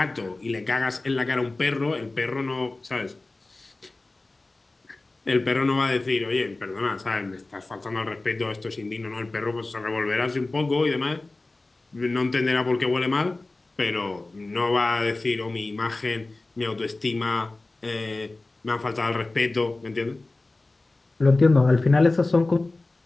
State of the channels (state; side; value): quieter; right; 3.1 dB